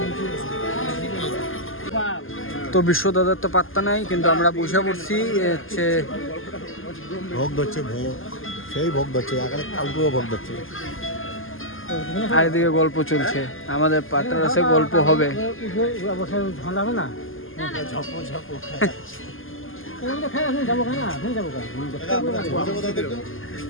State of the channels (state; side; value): late; right; 0.59 ms